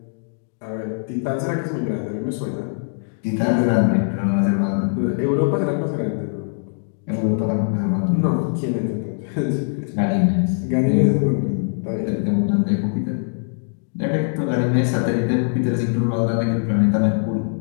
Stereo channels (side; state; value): right; silent; digital silence